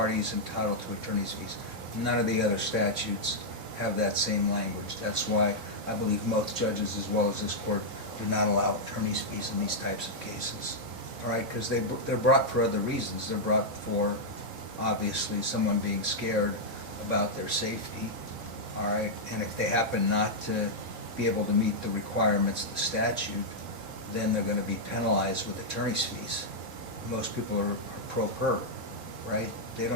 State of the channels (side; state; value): left; late; 4.1 ms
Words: is entitled to attorney's fees. None of the other statutes have that same language. That's why I believe most judges, as well as this court, do not allow attorney's fees in these types of cases. All right, because they're brought for other reasons. They're brought for, obviously, someone being scared about their safety. All right, and if they happen not to be able to meet the requirements of the statute, then they're gonna be penalized with attorney's fees. Most people are pro per, right? They